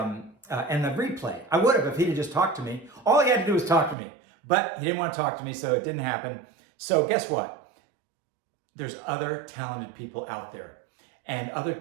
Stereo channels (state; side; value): drops out; left; at 4.0 s